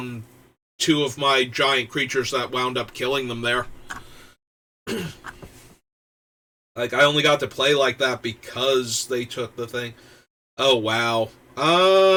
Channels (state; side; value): identical; both; correlation 1.00